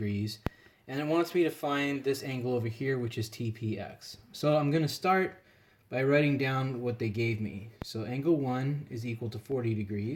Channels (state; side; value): identical; both; correlation 1.00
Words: And it wants me to find this angle over here, which is TPX. So I'm going to start by writing down what they gave me. So angle 1 is equal to 40